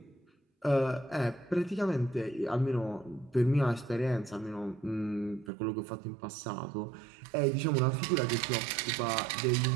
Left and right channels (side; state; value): left; drops out; at 5.5 s